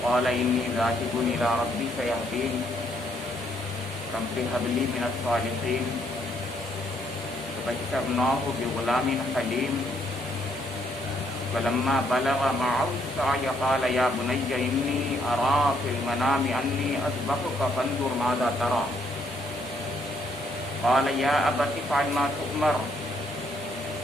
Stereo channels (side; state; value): both; normal; correlation 0.71